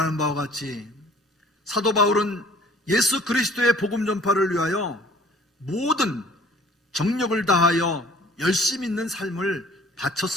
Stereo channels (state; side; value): normal; both; correlation 0.52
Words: 바와 같이 사도 바울은 예수 그리스도의 복음 전파를 위하여 모든 정력을 다하여 열심히 있는 삶을